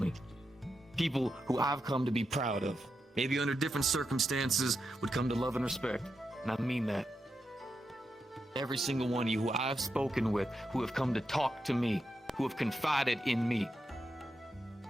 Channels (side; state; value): both; normal; correlation 0.86